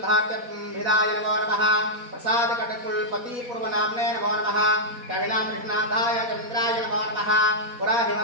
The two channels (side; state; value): left; late; 4.2 ms